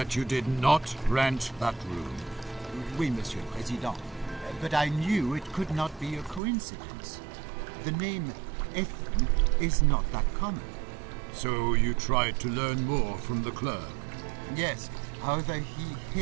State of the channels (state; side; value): drops out; left; at 6.4 s